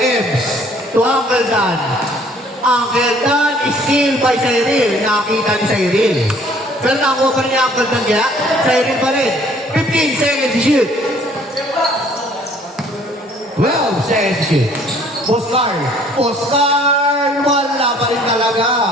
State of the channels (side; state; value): both; normal; correlation 0.58